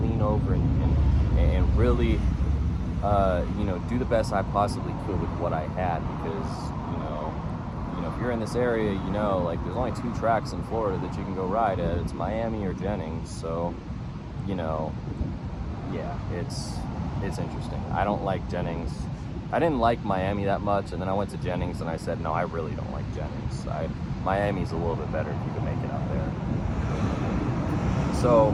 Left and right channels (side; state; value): both; identical; correlation 1.00